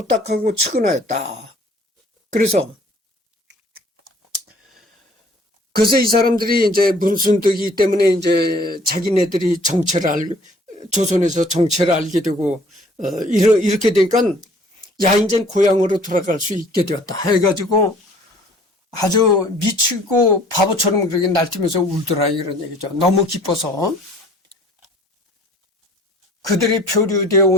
딱하고 측은하였다. 그래서 이 사람들이 이제 문순득이 때문에 이제 자기네들이 조선에서 정체를 알게 되고, 이렇게 되니까, 야, 이제 고향으로 돌아갈 수 있게 되었다. 해가지고 아주 미치고 바보처럼 그렇게 날뛰면서 울더라. 이런 얘기죠. 너무 기뻐서. 그들이 표류되어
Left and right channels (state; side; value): normal; both; correlation 0.54